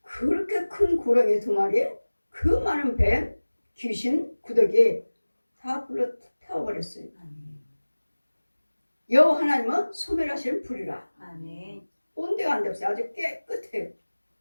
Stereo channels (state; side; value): inverted; both; correlation -1.00